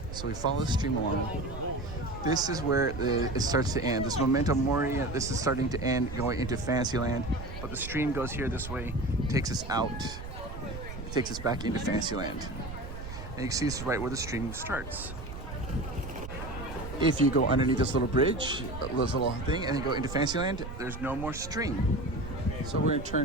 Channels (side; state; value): right; noise; rumble, 10 dB below the sound